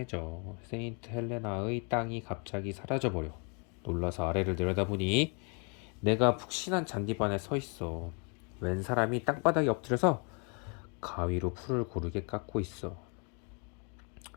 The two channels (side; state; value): right; quieter; 35.4 dB